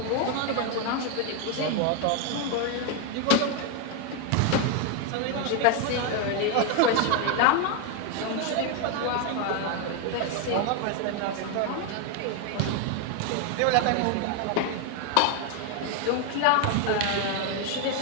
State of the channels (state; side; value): different; both; correlation 0.01